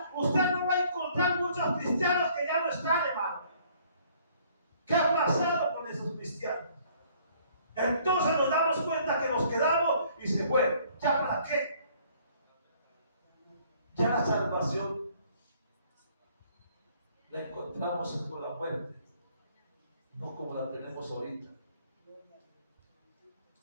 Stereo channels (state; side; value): inverted; both; correlation -0.60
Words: usted no va a encontrar muchos cristianos que ya no están, hermano. ¿Qué ha pasado con esos cristianos? Entonces nos damos cuenta que nos quedamos y se fue. ¿Ya para qué? Ya la salvación la encontramos con la muerte, no como la tenemos ahorita.